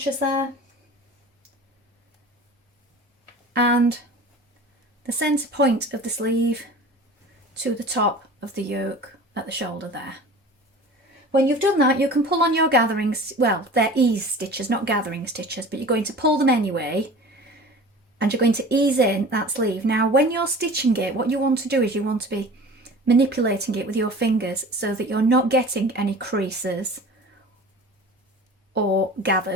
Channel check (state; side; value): normal; both; correlation 0.40